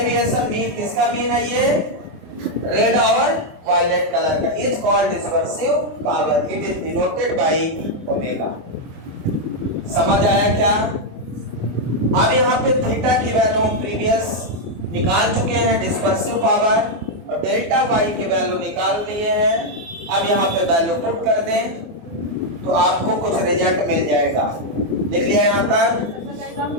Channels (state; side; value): late; left; 24 ms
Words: मीन, किसका मीन है ये? रेड और वायलेट कलर का। Is called dispersive power, it is denoted by omega. समझ आया क्या? अब यहाँ पे थीटा की वैल्यू हम प्रीवियस निकाल चुके हैं, डिस्पर्सिव पावर, और डेल्टा वाई की वैल्यू निकाल लिए हैं। अब यहाँ पे वैल्यू पुट कर दें तो आपको कुछ रिजल्ट मिल जाएगा। लिख लिया यहाँ तक?